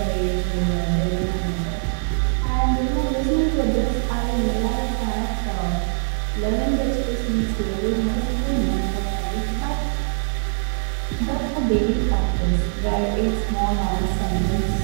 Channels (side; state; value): left; silent; 64 dB below the other